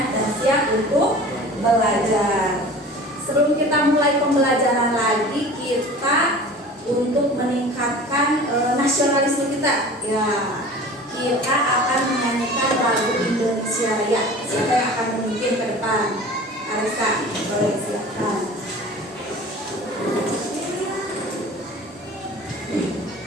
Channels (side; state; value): both; normal; correlation 0.40